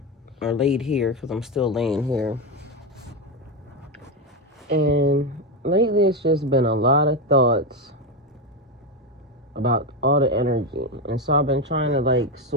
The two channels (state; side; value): normal; both; correlation 0.12